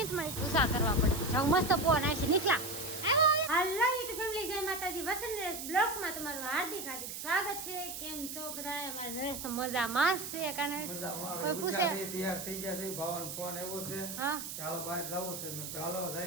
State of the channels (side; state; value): right; noise; hiss, 7 dB below the sound